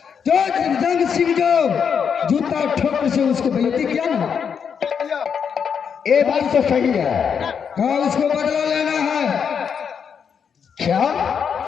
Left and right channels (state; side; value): quieter; right; 7.0 dB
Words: जो जंग सिंह जो जूता ठोकर से उसको बेइज्जती किया ना, ये बात तो सही है। क्या उसको बदला लेना है? क्या